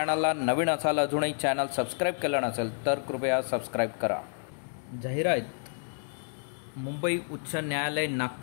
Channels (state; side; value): silent; right; 58 dB below the other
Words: नवीन असाल, अजूनही चॅनल सबस्क्राईब केलं नसेल तर कृपया सबस्क्राईब करा। जाहिरात मुंबई उच्च न्यायालय